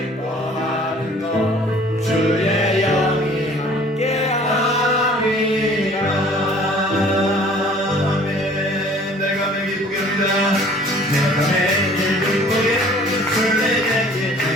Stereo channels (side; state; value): both; normal; correlation 0.52